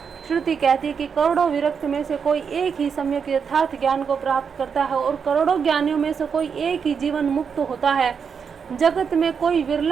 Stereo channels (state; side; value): quieter; left; 6.4 dB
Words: श्रुति कहती है कि करोड़ों विरक्त में से कोई एक ही सम्यक यथार्थ ज्ञान को प्राप्त करता है और करोड़ों ज्ञानियों में से कोई एक ही जीवन मुक्त होता है। जगत में कोई